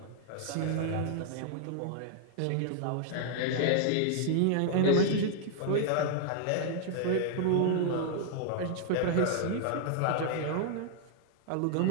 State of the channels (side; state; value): both; different; correlation 0.00